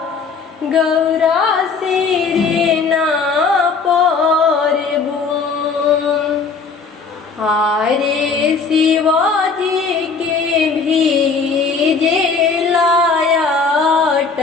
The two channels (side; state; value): right; quieter; 4.8 dB